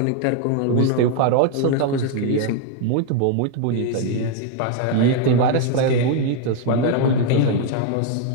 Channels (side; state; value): both; different; correlation 0.01